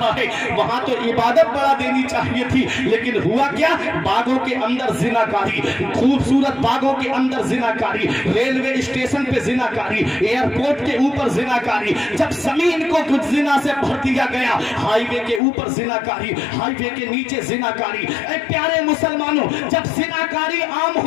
है। वहां तो इबादत बढ़ा देनी चाहिए थी, लेकिन हुआ क्या? बागों के अंदर जिनाकारी, खूबसूरत बागों के अंदर जिनाकारी, रेलवे स्टेशन पे जिनाकारी, एयरपोर्ट के ऊपर जिनाकारी, जब जमीन को कुछ जिना से भर दिया गया, हाईवे के ऊपर जिनाकारी, हाईवे के नीचे जिनाकारी। ऐ प्यारे मुसलमानों, जब जिनाकारी आम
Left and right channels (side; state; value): right; drops out; at 15.4 s